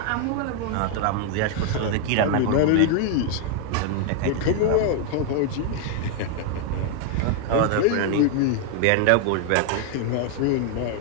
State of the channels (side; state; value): both; different; correlation 0.00